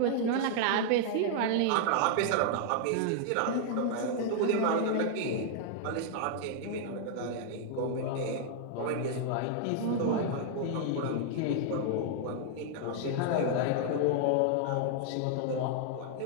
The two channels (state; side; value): different; both; correlation 0.00